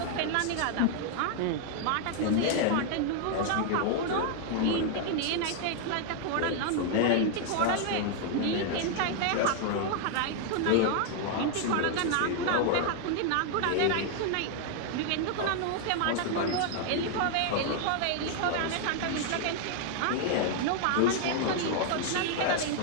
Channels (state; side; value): different; both; correlation 0.00